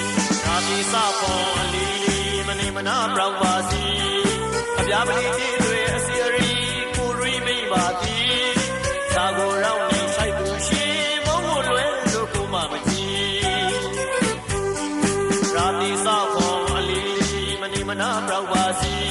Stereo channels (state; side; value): identical; both; correlation 1.00